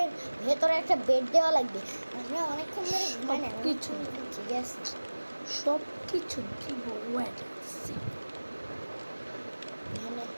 ভেতরে একটা বেড দেওয়া লাগবে। আমরা অনেকক্ষণ ধরে ঘুমাই না, কিছু। ঠিক আছে। সব কিছু দিব ওয়েট এখানে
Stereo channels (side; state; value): both; inverted; correlation -1.00